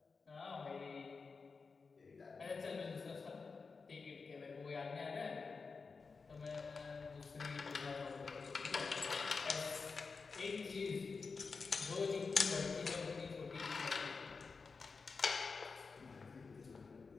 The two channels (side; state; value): right; quieter; 4.7 dB